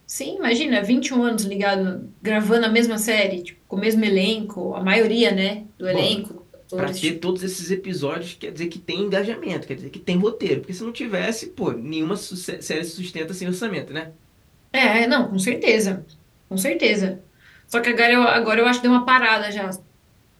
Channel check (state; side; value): identical; both; correlation 1.00